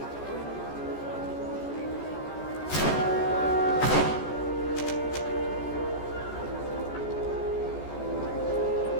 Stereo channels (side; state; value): right; late; 14 ms